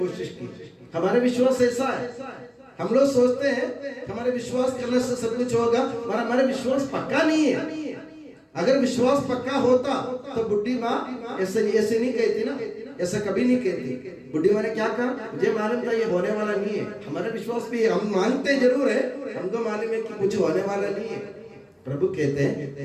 की। हमारे विश्वास ऐसा है, हम लोग सोचते हैं हमारे विश्वास करने से सब कुछ होगा, हमारा विश्वास पक्का नहीं है। अगर विश्वास पक्का होता तो बुढ़ी माँ ऐसे नहीं कहती ना, ऐसा कभी नहीं कहती। बुढ़ी माँ ने क्या कहा मुझे मालूम था ये होने वाला नहीं है। हमारा विश्वास भी हम मांगते जरूर है, हमको मालूम है कि कुछ होने वाला नहीं है। प्रभु कहते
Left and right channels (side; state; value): both; identical; correlation 1.00